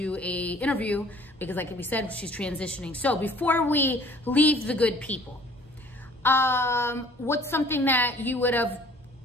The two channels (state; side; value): normal; both; correlation 0.53